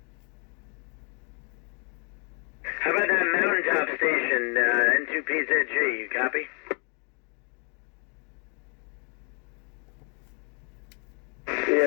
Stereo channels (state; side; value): quieter; right; 38.0 dB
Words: How about that mountaintop station, N2PZG, you copy?